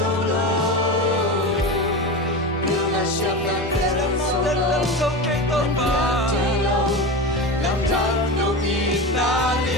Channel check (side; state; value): both; normal; correlation 0.24